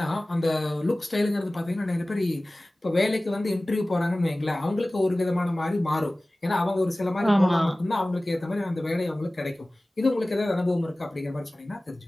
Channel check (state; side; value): normal; both; correlation 0.98